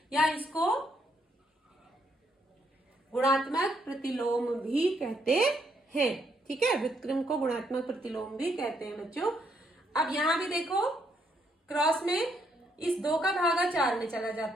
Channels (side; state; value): both; normal; correlation 0.74